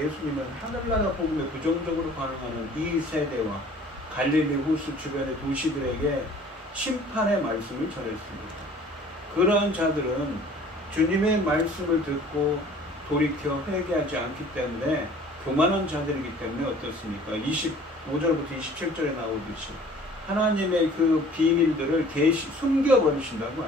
하늘나라 복음에 부정적으로 반응하는 이 세대와 갈릴리 호수 주변의 도시들에게 심판의 말씀을 전했습니다. 그러한 자들은 주님의 말씀을 듣고 돌이켜 회개하지 않기 때문에 교만한 자들이기 때문에 어떻습니까? 25절부터 27절에 나오듯이 하나님의 그 비밀들을 숨겨버리신다고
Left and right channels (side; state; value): both; normal; correlation 0.50